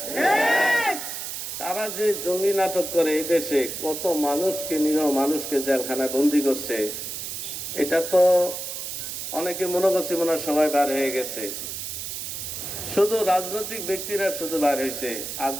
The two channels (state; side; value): noise; right; hiss, 6 dB below the sound